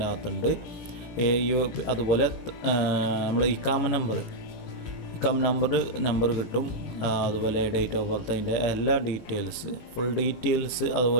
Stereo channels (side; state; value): right; late; 17 ms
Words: അകത്തുണ്ട്. അതുപോലെ നമ്മൾ ഇക്കാമ നമ്പർ കിട്ടും. അതുപോലെ ഡേറ്റ് ഓഫ് ബർത്ത്, അതിൻ്റെ എല്ലാ ഫുൾ ഡീറ്റെയിൽസ്